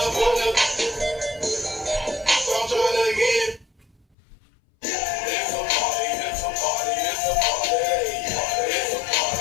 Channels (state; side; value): drops out; right; at 4.0 s